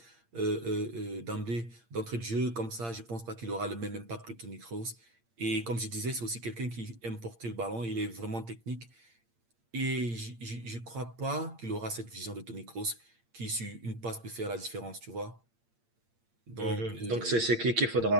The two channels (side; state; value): left; late; 8.7 ms